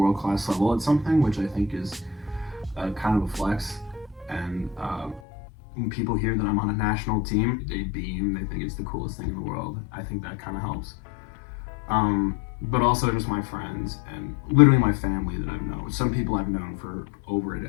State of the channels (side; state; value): right; drops out; at 5.2 s